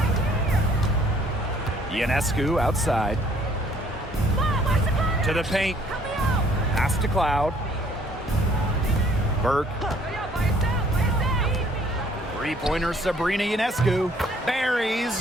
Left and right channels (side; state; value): both; normal; correlation 0.60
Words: Ionescu outside. To the paint. Pass to Cloud. Burke. Three-pointer Sabrina Ionescu. Buries